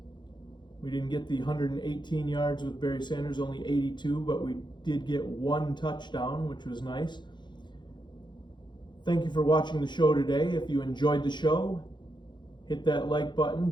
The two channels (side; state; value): right; late; 0.22 ms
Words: We didn't get the 118 yards with Barry Sanders, only 82, but we did get 1 touchdown, which was nice. Thank you for watching the show today. If you enjoyed the show, hit that like button.